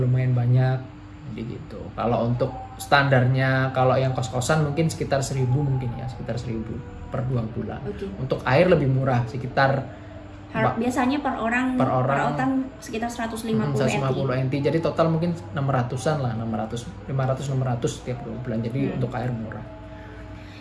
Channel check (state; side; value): identical; both; correlation 1.00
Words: banyak. Jadi gitu. Kalau untuk standarnya, kalau yang kos-kosan mungkin sekitar 1.000 mungkin ya, sekitar 1.000 per 2 bulan. Okay. Untuk air lebih murah, sekitar biasanya per orang sekitar 150 NT. Jadi total mungkin 600-an lah, 500-600 tiap 2 bulan. Jadi untuk air murah.